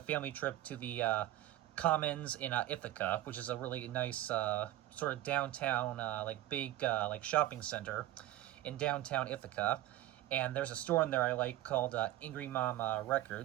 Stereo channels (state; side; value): quieter; left; 14.7 dB